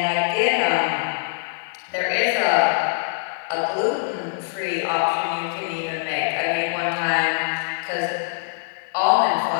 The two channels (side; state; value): right; silent; digital silence